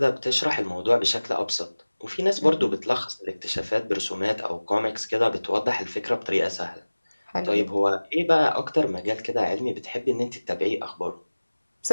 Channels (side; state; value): both; inverted; correlation -1.00